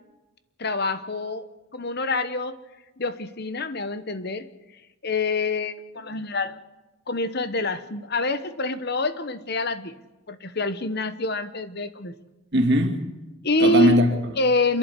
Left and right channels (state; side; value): normal; both; correlation 0.19